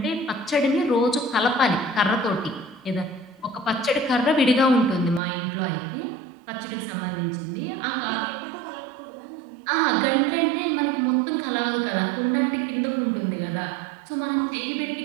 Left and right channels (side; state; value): left; drops out; at 5.2 s